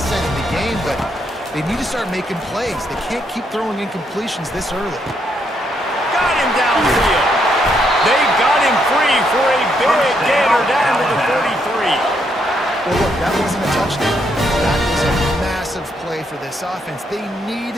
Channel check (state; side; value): normal; both; correlation 0.76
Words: in the game, but they need to start making plays. They can't keep throwing incompletions this early. Got him downfield. They've got him free for a big gainer down to the 33. Well, look, that wasn't a touchdown. That was a massive play for this offense. They